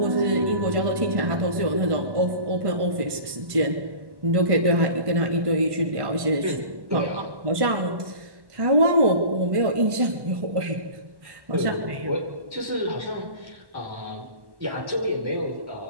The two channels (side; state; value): left; late; 1.1 ms